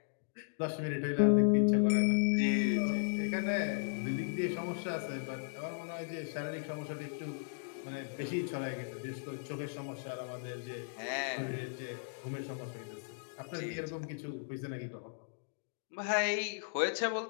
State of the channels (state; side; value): silent; right; digital silence